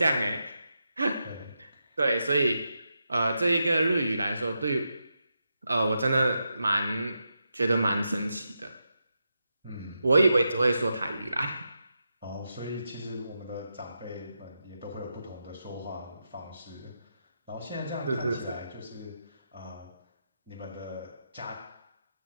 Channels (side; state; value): both; inverted; correlation -0.86